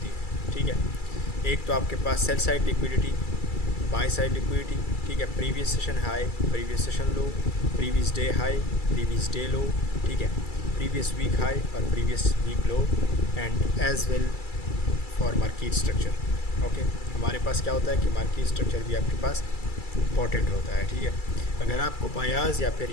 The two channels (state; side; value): late; right; 2.3 ms